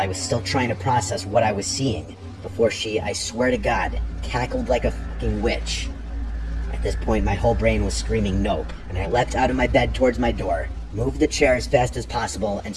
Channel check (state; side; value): identical; both; correlation 1.00